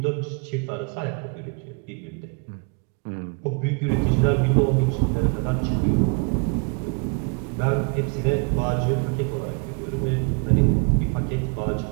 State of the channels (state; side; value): quieter; left; 35.6 dB